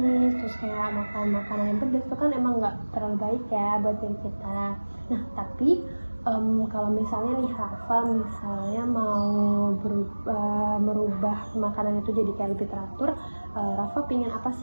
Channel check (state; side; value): inverted; both; correlation -1.00